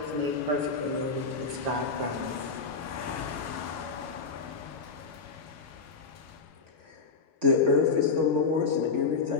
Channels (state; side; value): quieter; right; 4.7 dB